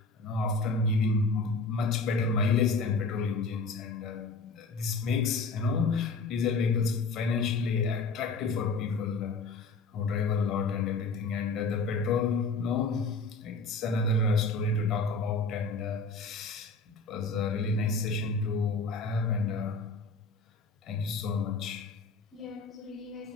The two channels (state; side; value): quieter; right; 3.9 dB